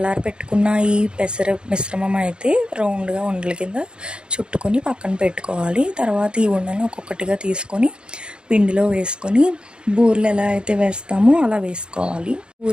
పెట్టుకున్న ఈ పెసర మిశ్రమం అయితే రౌండ్గా ఉండల కింద చుట్టుకొని పక్కన పెట్టుకోవాలి. తర్వాత ఈ ఉండలను ఒక్కొక్కటిగా తీసుకొని పిండిలో వేసుకొని బూరెలు ఎలా అయితే వేస్తామో అలా వేసుకోవాలి.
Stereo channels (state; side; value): late; left; 0.052 ms